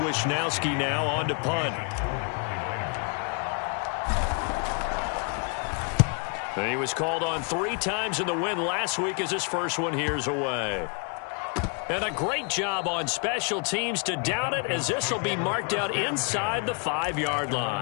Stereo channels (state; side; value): quieter; right; 37.7 dB